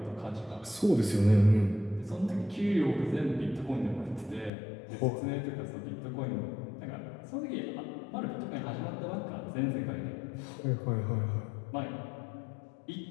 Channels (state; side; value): drops out; right; at 4.5 s